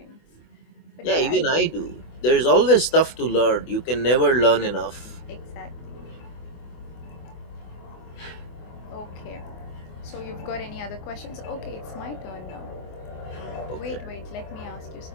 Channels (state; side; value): late; right; 24 ms